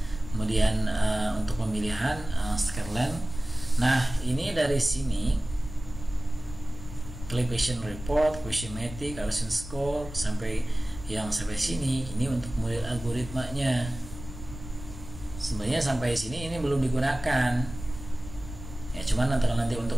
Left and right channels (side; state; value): left; noise; rumble, 12 dB below the sound